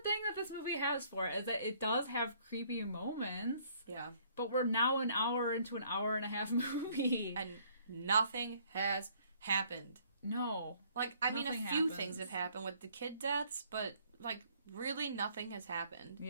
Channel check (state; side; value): inverted; both; correlation -0.62